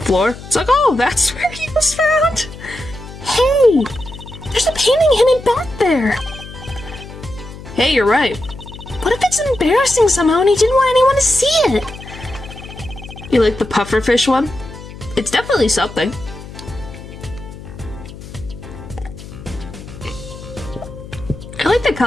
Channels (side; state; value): left; noise; hum, 14 dB below the sound